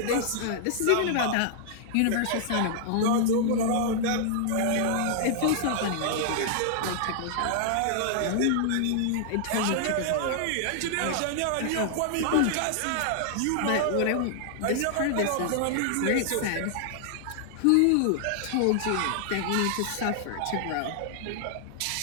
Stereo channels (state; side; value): different; both; correlation -0.01